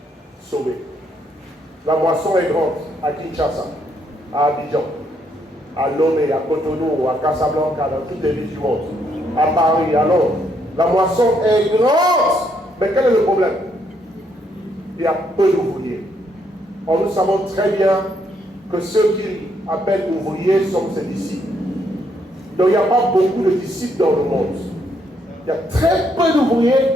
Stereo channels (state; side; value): normal; both; correlation 0.73